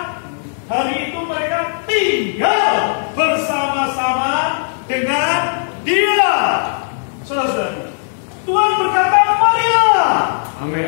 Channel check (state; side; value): silent; right; 68 dB below the other